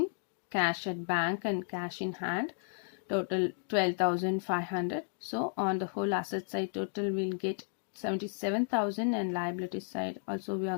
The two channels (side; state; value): right; silent; digital silence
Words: cash at bank and cash in hand total 12,500. So on the whole asset side total we'll get 77,000 and liability side also we